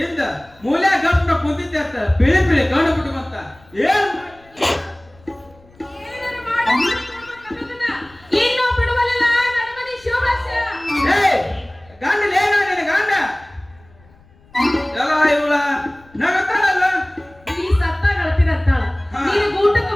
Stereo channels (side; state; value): left; noise; rumble, 28 dB below the sound